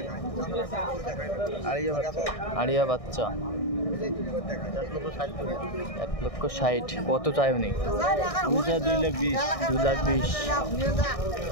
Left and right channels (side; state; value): right; late; 1.6 ms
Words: আড়িয়া বাচ্চা। 1,60,000। কত চাই উনি? 2,20,000।